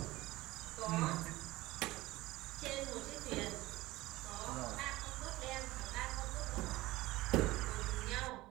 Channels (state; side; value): quieter; left; 18.6 dB